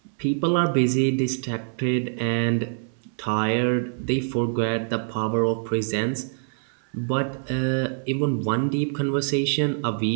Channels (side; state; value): left; silent; 62 dB below the other